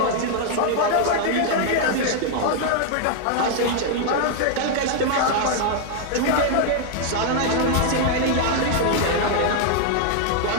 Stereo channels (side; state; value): both; different; correlation 0.00